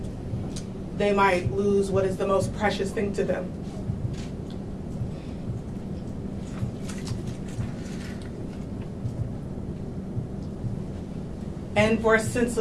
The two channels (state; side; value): identical; both; correlation 1.00